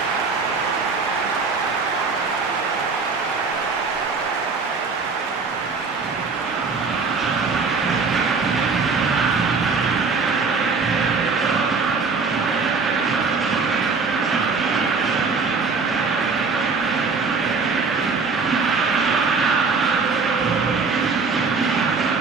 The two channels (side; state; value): left; quieter; 4.6 dB